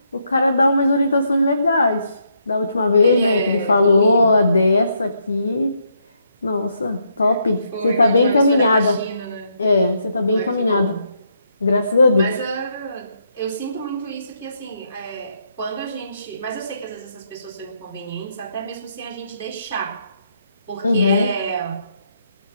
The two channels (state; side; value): inverted; both; correlation -0.76